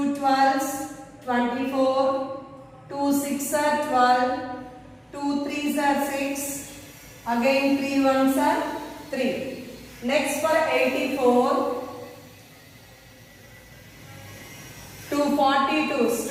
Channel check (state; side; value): identical; both; correlation 1.00